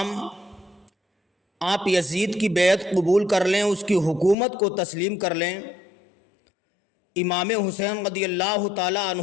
آپ یزید کی بیعت قبول کر لیں، اس کی حکومت کو تسلیم کر لیں۔ امام حسین رضی اللہ تعالیٰ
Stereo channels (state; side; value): drops out; right; at 4.4 s